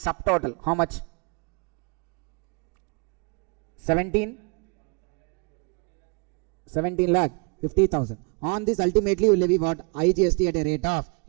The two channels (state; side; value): quieter; left; 35.2 dB